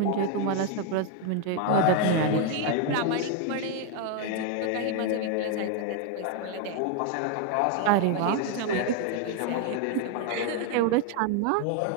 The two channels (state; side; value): different; both; correlation 0.01